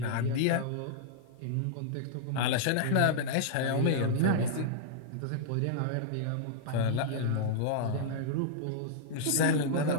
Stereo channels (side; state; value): both; different; correlation -0.02